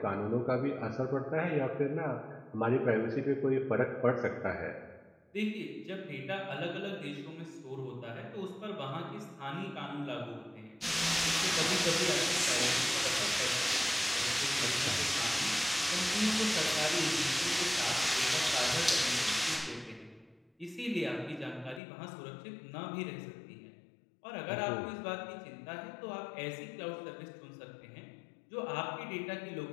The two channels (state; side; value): drops out; right; at 21.8 s